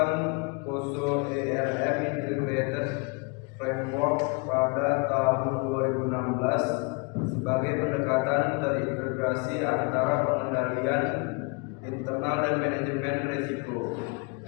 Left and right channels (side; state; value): right; quieter; 31.3 dB